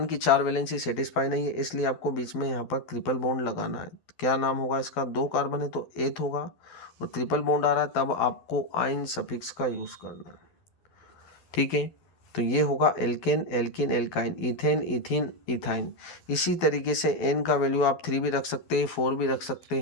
की 4 वैलेंसी सेटिस्फाई नहीं है, इसलिए आपको बीच में यहाँ पर ट्रिपल बॉन्ड लगाना है। क्या नाम होगा इसका? 2 कार्बन है तो एथ होगा और ट्रिपल बॉन्ड आ रहा है, तब आपको आइन सफिक्स का यूज़ करना है। ठीक है, तो ये होगा alkane, alkene, alkyne, ethane, ethene, ethyne. इसी तरीके से एन का वैल्यू आप 3 भी रख सकते हैं, 4 भी रख सकते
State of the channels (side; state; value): right; late; 12 ms